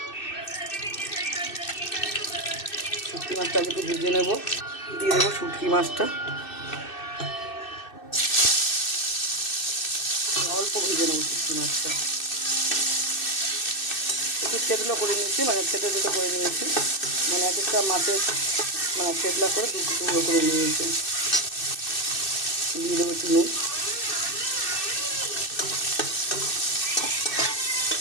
শুটকি মাছটা আগে একটু ভেজে নেবো। দিয়ে দেবো শুটকি মাছটা, অল্প ভেজে নেবো শুটকি মাছটা। একটু থেতলা করে নিয়েছি, মানে থেতো করে নিয়েছি, মানে এক একটা মাছের মানে থেতলা করে টুকরো করে নিয়েছি। দিয়ে দেবো একটু নুন,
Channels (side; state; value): right; late; 2.6 ms